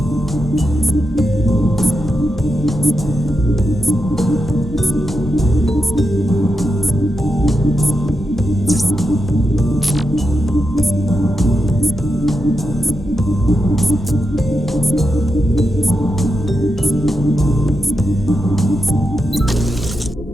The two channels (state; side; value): normal; both; correlation 0.87